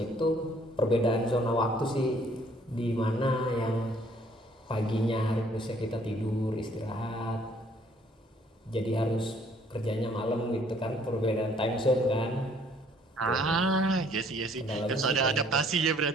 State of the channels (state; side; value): normal; both; correlation 0.61